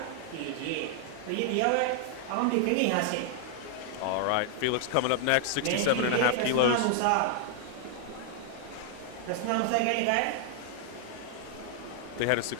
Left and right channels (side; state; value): both; different; correlation 0.00